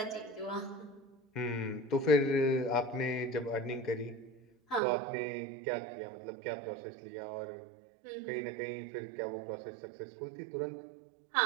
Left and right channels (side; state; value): left; drops out; at 4.8 s